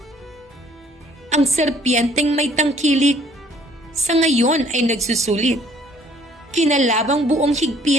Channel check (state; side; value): normal; both; correlation 0.59